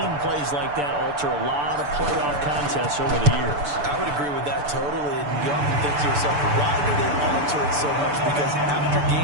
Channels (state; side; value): late; left; 6.9 ms